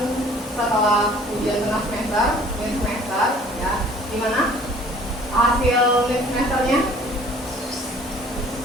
setelah ujian tengah semester, mid semester, ya. Gimana hasil mid semesternya?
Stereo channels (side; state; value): both; normal; correlation 0.52